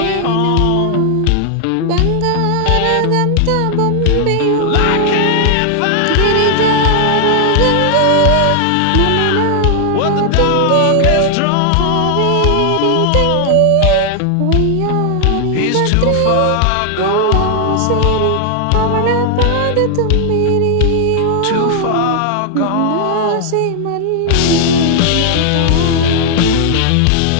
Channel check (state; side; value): different; both; correlation 0.00